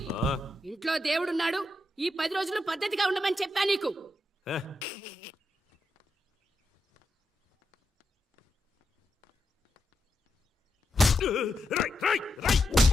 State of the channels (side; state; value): both; normal; correlation 0.85